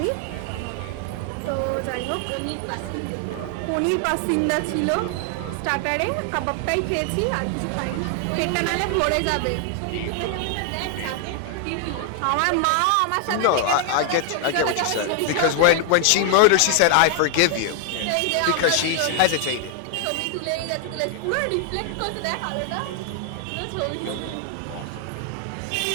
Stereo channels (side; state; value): both; different; correlation 0.00